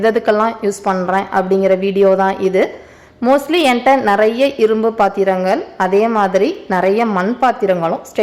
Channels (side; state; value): both; identical; correlation 1.00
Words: யூஸ் பண்ணுறேன் அப்படிங்கிற வீடியோ தான் இது. மோஸ்ட்லி என்கிட்ட நிறைய இரும்பு பாத்திரங்கள், அதே மாதிரி நிறைய மண் பாத்திரங்களும்